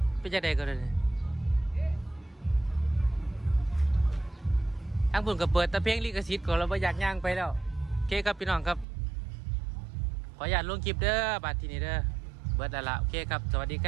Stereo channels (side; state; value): left; drops out; at 8.8 s